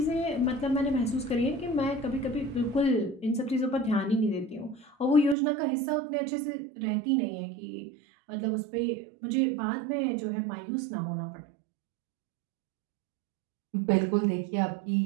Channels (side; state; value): left; drops out; at 5.4 s